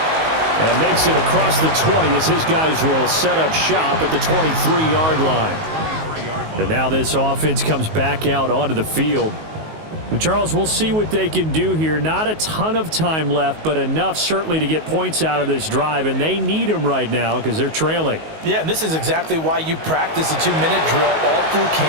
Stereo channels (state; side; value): late; left; 19 ms